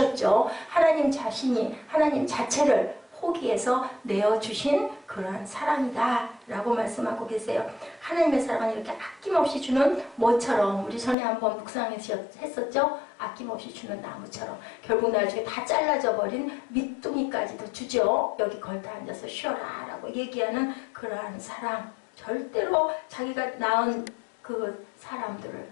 하나님 자신이 하나님 자체를 포기해서 내어주신 그러한 사랑이다 라고 말씀하고 계세요. 하나님의 사랑은 이렇게 아낌없이 주는 뭐처럼 우리 전에 한번 묵상했었죠. 아낌없이 주는 나무처럼 결국 나중에 다 잘라져 버린 밑둥이까지도 주죠. 여기 걸터 앉아서 쉬어라 라고 얘기하는 그러한 사랑. 절대로 자기가 낳은 그 사람들을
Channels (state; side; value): drops out; right; at 11.2 s